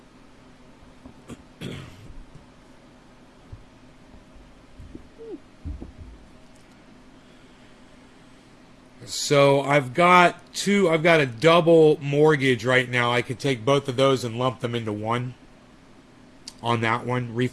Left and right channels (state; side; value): identical; both; correlation 1.00